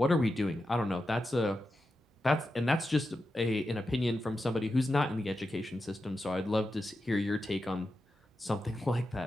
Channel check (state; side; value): normal; both; correlation 0.89